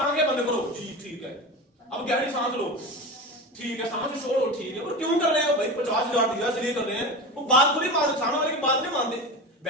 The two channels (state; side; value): normal; both; correlation 0.26